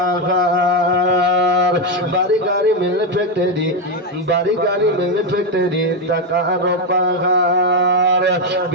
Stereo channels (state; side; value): normal; both; correlation 0.07